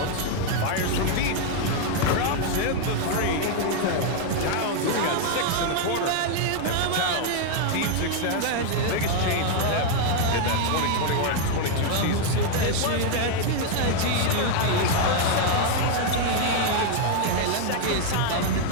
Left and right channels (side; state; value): both; different; correlation 0.00